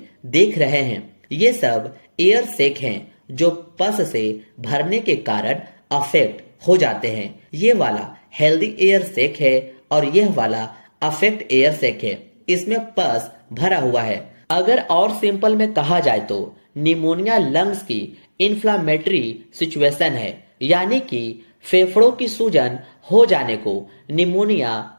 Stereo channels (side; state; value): both; inverted; correlation -1.00